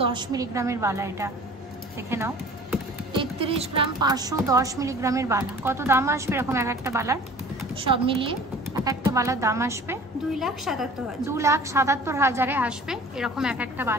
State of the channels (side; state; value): both; normal; correlation 0.46